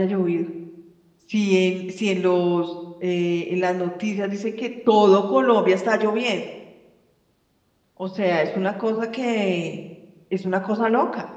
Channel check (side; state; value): both; identical; correlation 1.00